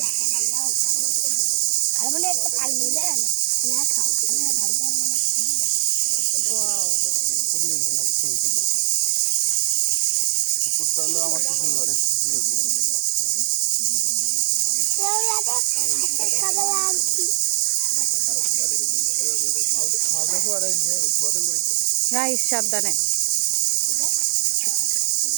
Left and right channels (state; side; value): silent; left; 58 dB below the other